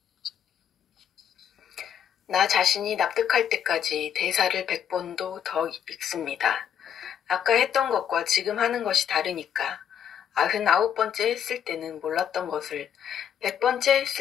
나 자신이 납득할 때까지 대사를 100번도 더 읽습니다. 아까 했던 것과 지금 하는 것이 다르니까. 99번째 했을 때는 몰랐던 것을 100번째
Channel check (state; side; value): quieter; right; 9.0 dB